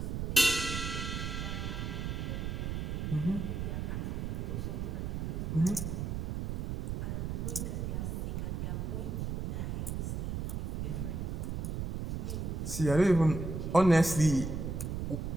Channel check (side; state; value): right; noise; rumble, 2 dB below the sound